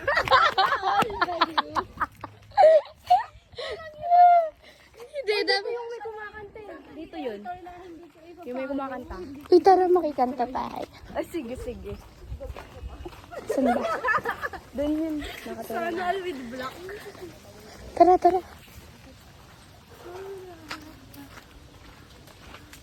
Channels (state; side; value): identical; both; correlation 1.00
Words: Hindi, dami yung may kumakanta. Dito yun. Yung may kumakanta. Uy, tara makikanta tayo. Ay, sige, sige. Saan ba? Doon yun. Sana with black. Tara, tara.